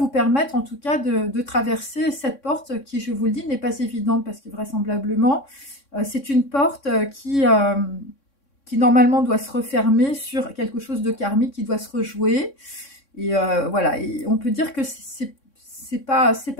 permettre en tout cas de traverser cette porte qui, je vous le dis, n'est pas évidente parce que vraisemblablement, c'est une porte qui normalement doit se refermer sur quelque chose de karmique qui doit se rejouer. Et voilà, et on peut dire que c'est pas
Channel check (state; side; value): late; right; 3.6 ms